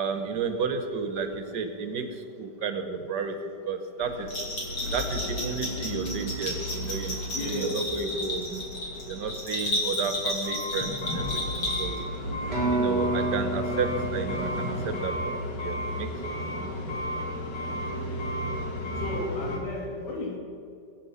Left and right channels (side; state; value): right; late; 5.1 ms